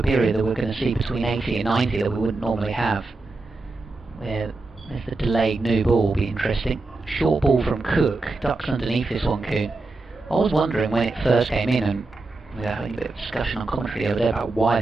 period that we're going to see between 80 and 90 that we wouldn't normally have, where there's the delayed new ball, will be interesting. Short ball from Cook, ducks underneath this one, Coon. I was wondering when it first came in, and we were having a bit of discussion on commentary the other day about why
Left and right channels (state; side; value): quieter; left; 3.4 dB